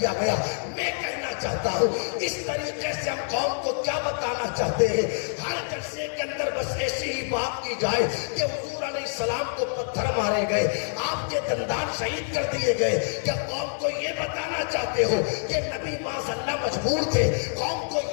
گیا. میں کہنا چاہتا ہوں اس طریقے سے ہم قوم کو کیا بتانا چاہتے ہیں؟ ہر جلسے کے اندر بس ایسی ہی بات کی جائے کہ حضور علیہ السلام کو پتھر مارے گئے، آپ کے دندان شہید کر دیے گئے. کیا قوم کو یہ بتانا چاہتے ہو کہ نبی معاذ اللہ مجبور تھے؟ قوم کو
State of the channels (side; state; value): right; silent; 61 dB below the other